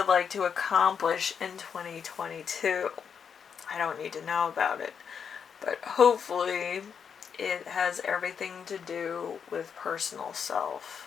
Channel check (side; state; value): right; quieter; 7.0 dB